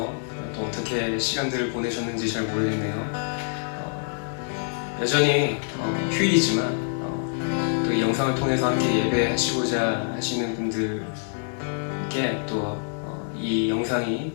또 어떻게 시간들을 보내셨는지 잘 모르겠네요. 여전히 휴일이지만 또 이 영상을 통해서 함께 예배하시고자 하시는 분들께 또 이 영상이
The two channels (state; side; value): silent; right; digital silence